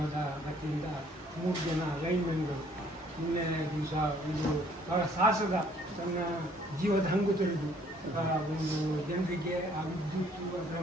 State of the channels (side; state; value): both; normal; correlation 0.61